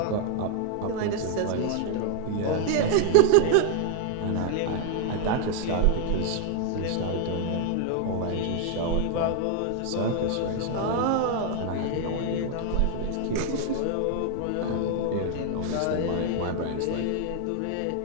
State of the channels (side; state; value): both; different; correlation 0.00